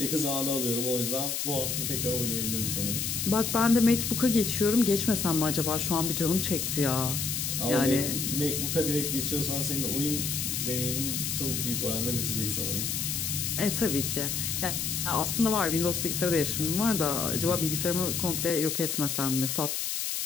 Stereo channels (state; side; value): noise; left; hiss, 1 dB below the sound